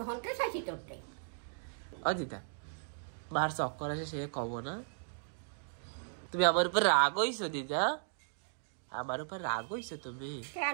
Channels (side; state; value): left; silent; digital silence